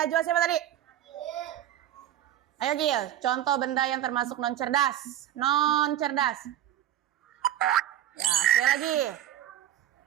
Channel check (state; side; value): quieter; left; 12.1 dB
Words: siapa tadi? Ayo Gil, contoh benda yang termasuk non cerdas, Ya, sekali lagi.